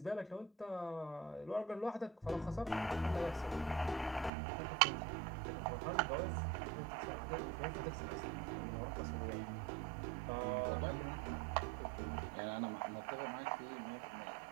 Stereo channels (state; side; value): drops out; left; at 4.3 s